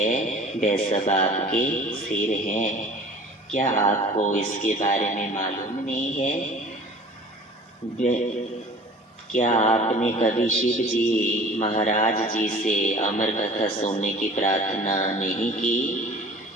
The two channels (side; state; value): both; normal; correlation 0.45